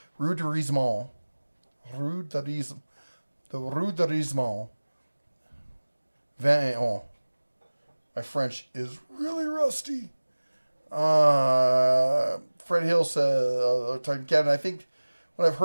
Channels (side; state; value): both; inverted; correlation -1.00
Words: Rue de Rizemont. The Rue de Rizemont. 21. My French is really rusty. Fred Hill says, talking to Kevin, I think what I've